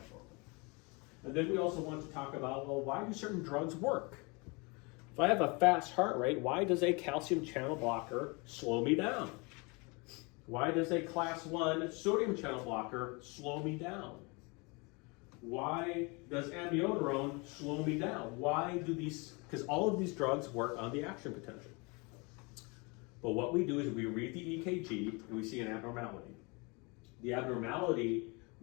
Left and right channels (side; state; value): right; quieter; 29.1 dB